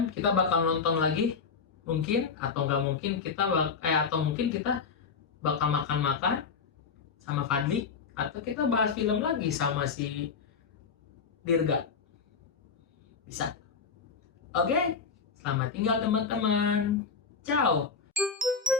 kita bakal nonton lagi, mungkin, atau nggak mungkin kita bakal makan-makan sama Fadli, atau kita bahas film lagi sama si Dirga. Bisa. Oke, selamat tinggal teman-teman. Ciao.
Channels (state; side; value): quieter; right; 5.6 dB